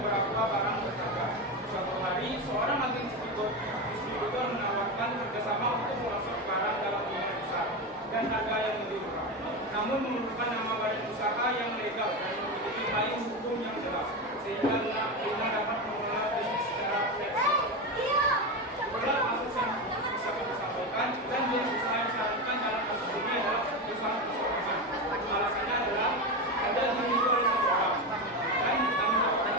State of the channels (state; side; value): normal; both; correlation 0.17